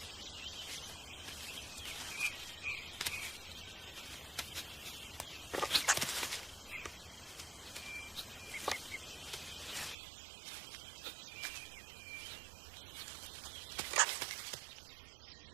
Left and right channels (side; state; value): left; drops out; at 10.0 s